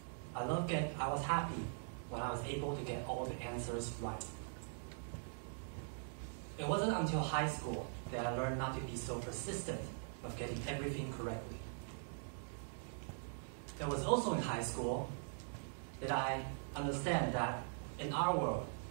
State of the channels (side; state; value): left; silent; digital silence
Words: I was happy when I was able to get all the answers right. It wasn't until high school that I learned not to be so persistent of getting everything correctly. It was also in high school that I understand that in our world,